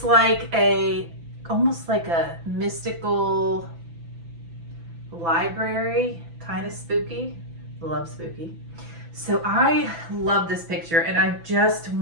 like almost like a mystical library, kind of spooky. Love spooky. So I love this picture and I just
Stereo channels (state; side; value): late; left; 6.0 ms